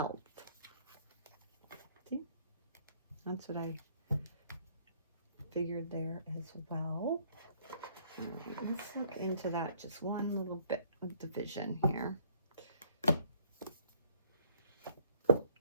See? That's what I figured there as well. Let's look into that just one little bit of the vision here.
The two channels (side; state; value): both; inverted; correlation -0.62